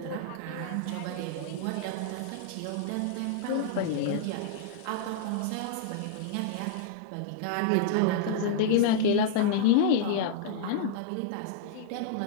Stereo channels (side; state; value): both; different; correlation -0.01